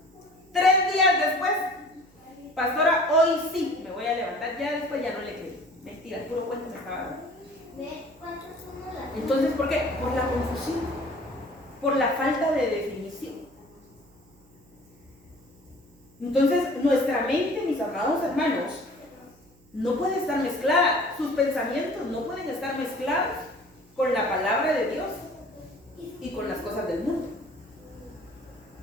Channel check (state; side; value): noise; right; hum, 30 dB below the sound